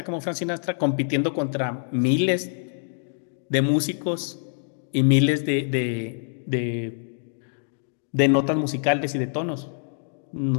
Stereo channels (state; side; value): silent; right; 61 dB below the other